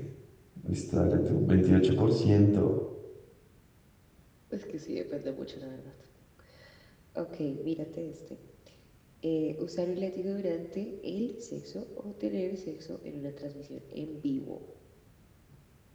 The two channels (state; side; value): identical; both; correlation 1.00